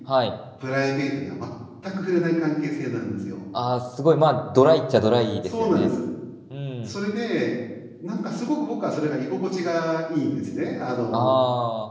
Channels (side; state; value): both; identical; correlation 1.00